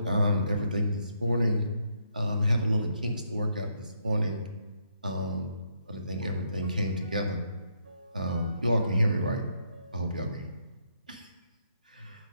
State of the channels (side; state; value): both; inverted; correlation -0.75